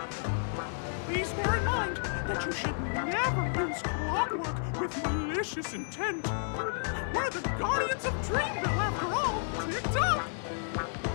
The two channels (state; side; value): silent; right; digital silence